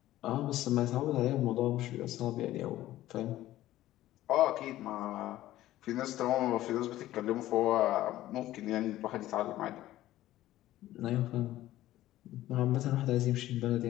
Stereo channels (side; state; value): right; quieter; 14.8 dB